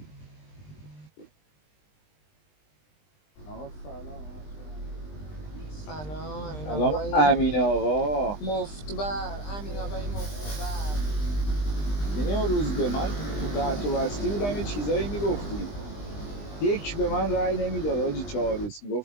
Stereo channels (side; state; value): right; late; 20 ms